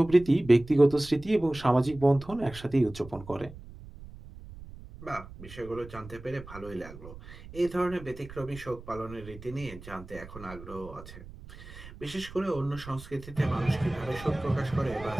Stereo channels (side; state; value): right; noise; rumble, 16 dB below the sound